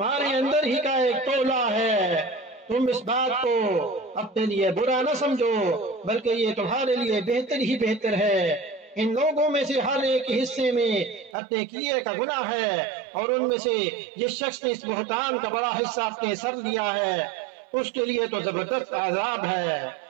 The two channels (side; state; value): left; drops out; at 11.4 s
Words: अंदर ही का एक तोला है। तुम इस बात को अपने लिए बुरा न समझो, बल्कि ये तुम्हारे लिए बेहतर ही बेहतर है। इन लोगों में से हर एक हिस्से में अपने किए का गुनाह है और उनमें से जिस शख्स ने इस बुहतान का बड़ा हिस्सा अपने सर लिया है उसके लिए तो जबरदस्त आजाब है।